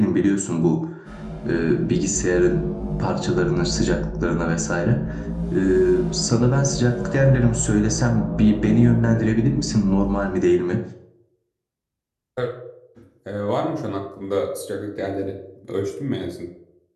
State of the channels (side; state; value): both; identical; correlation 1.00